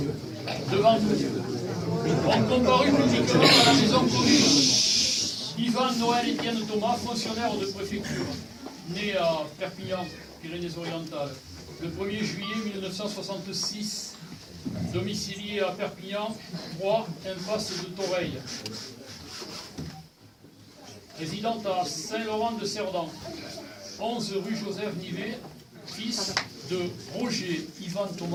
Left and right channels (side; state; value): both; identical; correlation 1.00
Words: devant nous, ont comparu publiquement à la maison commune Yvan Noël Étienne Thomas, fonctionnaire de préfecture, né à Perpignan, Pyrénées-Orientales, le 1er juillet 1966, domicilié à Perpignan, 3, impasse de Toreille. Résidente à Saint-Laurent-de-Cerdan, 11 rue Joseph Nivet, fils de Roger Yvan